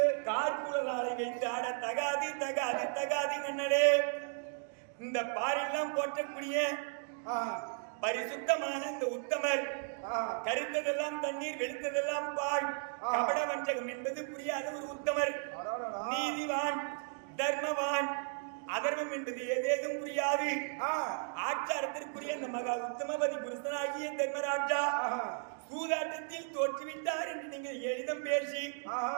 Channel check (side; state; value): left; silent; 54 dB below the other